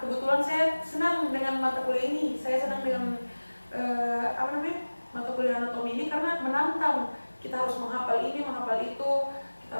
kebetulan saya senang dengan mata kuliah ini. Saya senang dengan mata kuliah anatomi ini karena menantang. Kita harus menghafal ini, menghafal itu. Kita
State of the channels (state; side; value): inverted; both; correlation -1.00